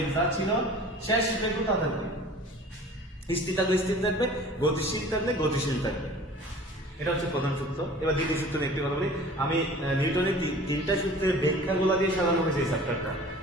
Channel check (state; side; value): normal; both; correlation 0.44